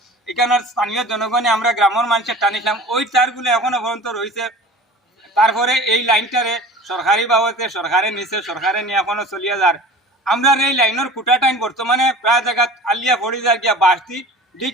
এখানের স্থানীয় জনগণে আমরা গ্রামের মানুষের টানিছিলাম, ওই তারগুলো এখনো পর্যন্ত রয়েছে। তারপরে এই লাইনটারে সরকারি বাবদে সরকারের নিচে সরকারে নিয়ে এখনো চলিয়া যার। আমরা এই লাইনের খুঁটা টাইম বর্তমানে প্রায় জায়গা আলিয়া পড়ি যায় গিয়া বাঁশটি ডিক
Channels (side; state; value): both; normal; correlation 0.40